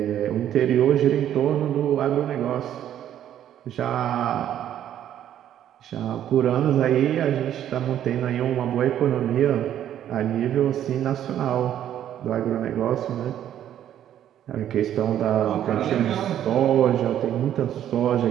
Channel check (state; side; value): quieter; left; 10.9 dB